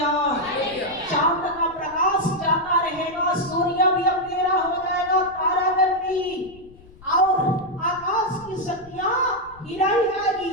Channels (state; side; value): noise; left; rumble, 23 dB below the sound